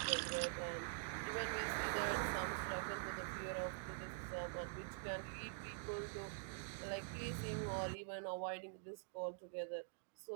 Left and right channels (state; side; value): silent; left; digital silence